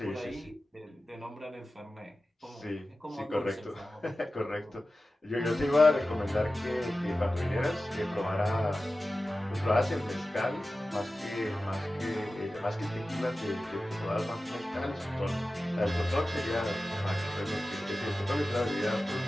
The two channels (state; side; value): normal; both; correlation 0.95